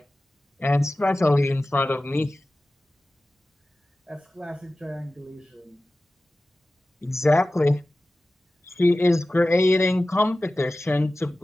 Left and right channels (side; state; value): both; normal; correlation 0.96